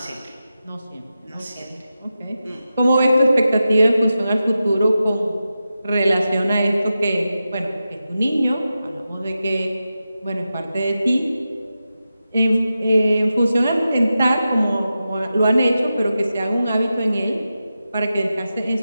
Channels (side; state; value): both; inverted; correlation -0.91